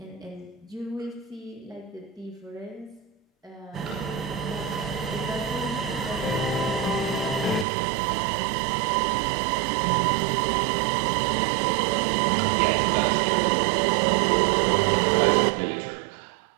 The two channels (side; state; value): left; drops out; at 7.7 s